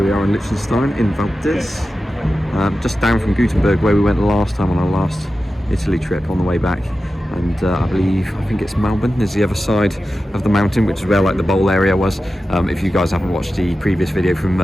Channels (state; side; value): normal; both; correlation 0.93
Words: we are in Liechtenstein, in Valdez, just down from Gutenberg where we went last time on our last Italy trip on the way back. And I think it's Melbourne is the other side of the mountain, which is where like the bowl area was. If you guys haven't watched the previous video from